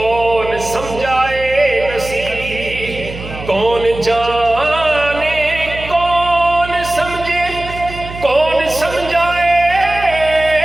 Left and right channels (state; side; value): noise; right; hum, 12 dB below the sound